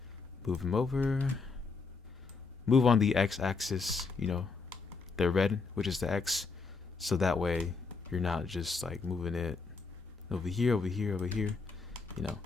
Move him over. Move on the X axis, the red, which is the X. So that way you're not just like moving it over here, over here, over here.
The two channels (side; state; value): right; quieter; 4.5 dB